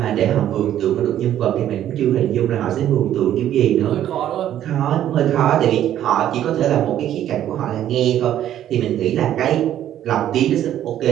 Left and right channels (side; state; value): left; quieter; 11.5 dB